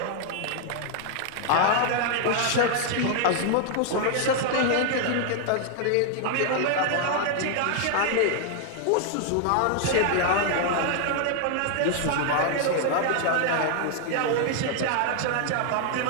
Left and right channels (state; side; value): different; both; correlation 0.00